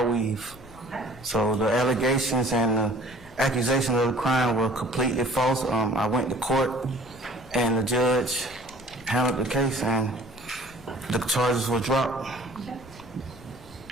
weave. Okay. So the allegations and the accusations of the crime were completely false. I went to court, and the judge handled the case, and the charges were dropped. Okay.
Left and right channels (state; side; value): noise; left; rumble, 22 dB below the sound